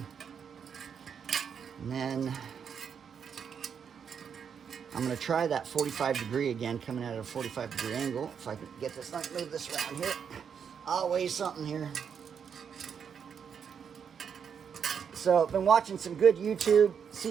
then I'm going to try that 45 degree again, coming at a 45 degree angle. If I can get this, let me move this around here. I'll weigh something here. So I've been watching some good YouTube,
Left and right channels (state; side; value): quieter; left; 7.2 dB